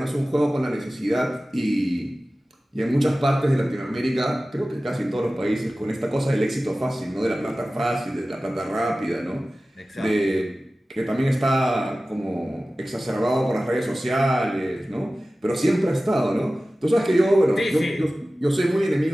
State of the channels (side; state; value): both; normal; correlation 0.96